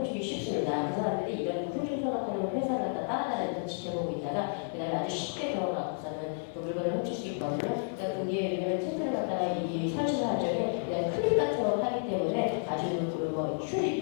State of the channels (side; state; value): right; silent; 57 dB below the other